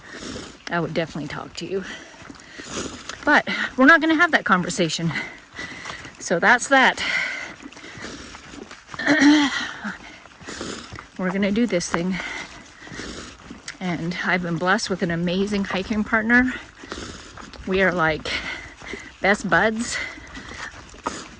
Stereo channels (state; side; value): identical; both; correlation 1.00